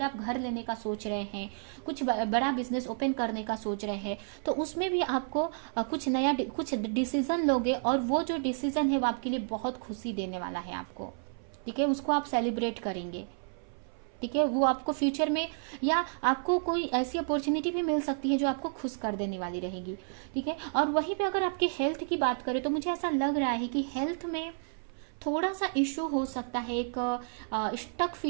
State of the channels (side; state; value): left; silent; 57 dB below the other